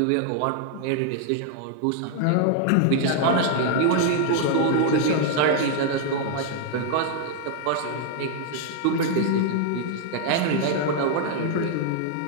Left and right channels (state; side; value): different; both; correlation 0.00